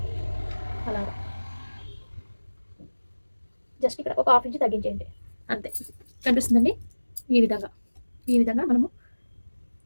అలాగా జస్ట్ ఇక్కడ ఒక 1/2 ఇంచ్ తగ్గించేయండి అంతే. కనిపిస్తుందండి. ఈ విధంగా మనము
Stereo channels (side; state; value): both; inverted; correlation -1.00